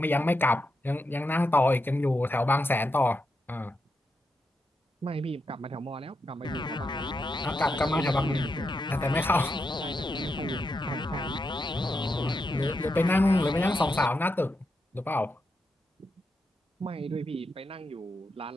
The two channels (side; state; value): both; normal; correlation 0.85